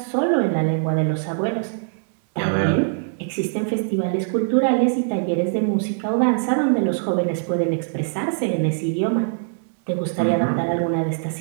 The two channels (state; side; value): silent; left; digital silence